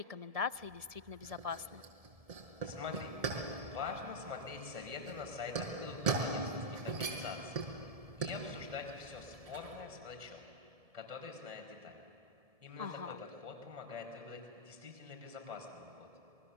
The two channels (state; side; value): late; left; 1.7 ms